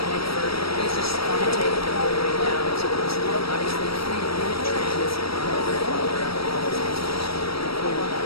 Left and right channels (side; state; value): right; late; 0.75 ms